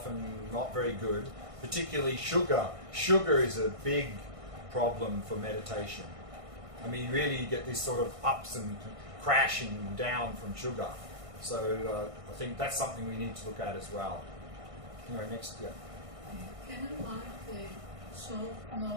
not very good, particularly sugar. Sugar is a big problem for meditation. I mean, really you get these sort of ups and crashing down from sugar. So I think that's something we need to look at as well. Anyway, next, yeah. Can I like the short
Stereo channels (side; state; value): left; late; 1.6 ms